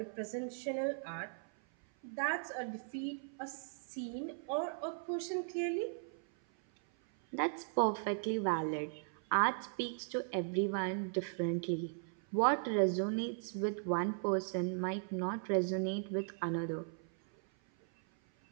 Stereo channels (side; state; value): left; silent; 53 dB below the other